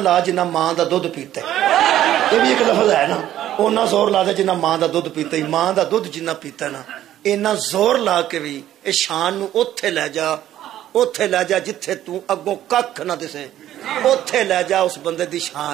ਜਿੰਨਾ ਮਾਂ ਦਾ ਦੁੱਧ ਪੀਤਾ। ਇਹ ਵੀ ਇੱਕ ਲਫ਼ਜ਼ ਹੈ ਨਾ ਉਹਨਾਂ ਜ਼ੋਰ ਲਾ ਦੇ ਜਿੰਨਾ ਮਾਂ ਦਾ ਦੁੱਧ ਪੀਤਾ ਹੀ ਮਾਂ ਦਾ ਦੁੱਧ ਜਿੰਨਾ ਪੀਤਾ ਨਾ ਇੰਨਾ ਜ਼ੋਰ ਲਾ ਕੇ ਵੀ ਇਹ ਸ਼ਾਨ ਨੂੰ ਉੱਥੇ ਲੈ ਜਾ ਜਿੱਥੇ ਤੂੰ ਅੱਗੋਂ ਕੱਖ ਨਾ ਦਿਸੇ ਉੱਥੇ ਲੈ ਜਾ ਉਸ ਬੰਦੇ ਦੀ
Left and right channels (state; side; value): quieter; left; 12.4 dB